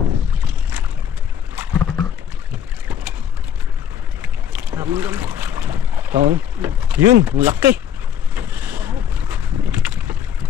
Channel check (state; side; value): quieter; right; 8.8 dB